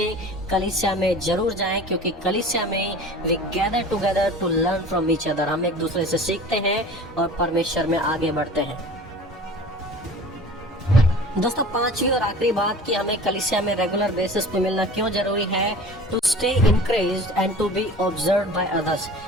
कलीसिया में जरूर जाएं, क्योंकि कलीसिया में we gather together to learn from each other. हम एक दूसरे से सीखते हैं और परमेश्वर में आगे बढ़ते हैं। दोस्तों पांचवी और आखिरी बात कि हमें कलीसिया में रेगुलर बेसिस पे मिलना क्यों जरूरी है, to stay encouraged and to be observed by others,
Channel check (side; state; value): both; normal; correlation 0.41